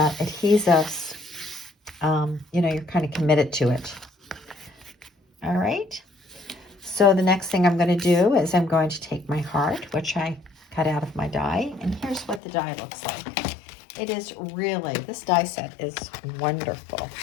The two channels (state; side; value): drops out; right; at 12.4 s